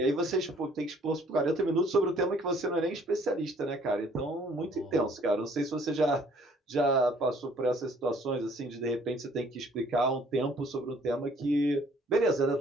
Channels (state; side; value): normal; both; correlation 0.59